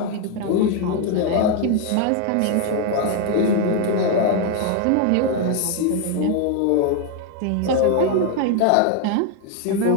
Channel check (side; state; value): both; different; correlation 0.01